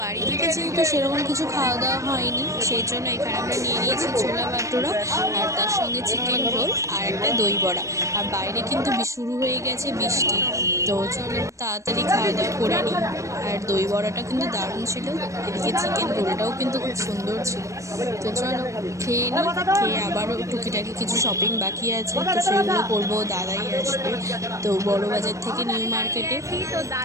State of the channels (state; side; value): late; left; 0.15 ms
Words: বাড়ি থেকে যেহেতু সেরকম কিছু খাওয়া দাওয়া হয়নি, সেই জন্য এখানে আমরা নিয়ে নিয়েছি ছোলা ভাটোরা, আর তার সঙ্গে চিকেন রোল আর একটা দই বড়া। আর বাইরে কিন্তু শুরু হয়ে গেছে বৃষ্টি, তো চলো তাড়াতাড়ি খাওয়া দাওয়া করে নিই। আর দই বড়াটা কিন্তু দারুণ ছিল, এদিকে চিকেন রোলটাও কিন্তু খুব সুন্দর ছিল। তো চলো খেয়ে নিই, খেয়ে আবারও টুকিটাকি কিছু শপিং বাকি আছে, তো সেগুলো করবো। দাদাই আসবে তো বড় বাজার থেকে নিউ মার্কেটে, তো